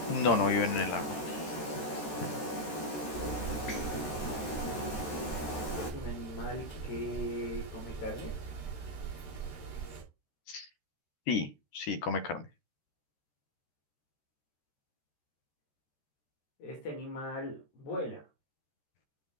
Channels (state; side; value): late; right; 13 ms